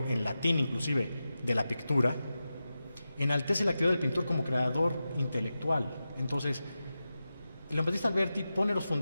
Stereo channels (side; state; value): both; inverted; correlation -0.92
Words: en latín inclusive de la pictura, enaltece la actividad del pintor como creador intelectual. Entonces, Leon Battista Alberti pone los